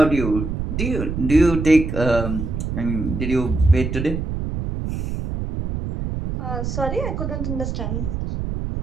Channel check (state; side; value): noise; right; rumble, 3 dB below the sound